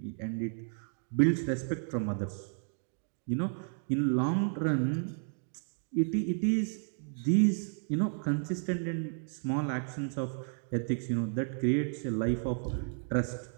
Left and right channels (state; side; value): silent; left; 56 dB below the other